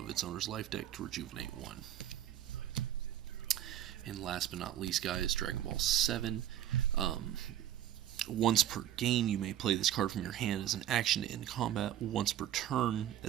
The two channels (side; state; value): left; quieter; 11.6 dB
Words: its owner's life deck to rejuvenate 1. And last but not least, guys, Dragon Ball 7. Once per game, you may play this card from your hand as an action to end combat. Once per turn,